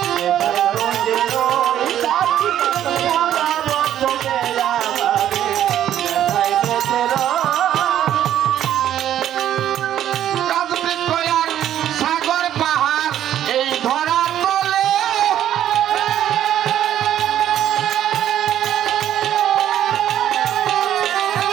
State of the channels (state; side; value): quieter; left; 11.2 dB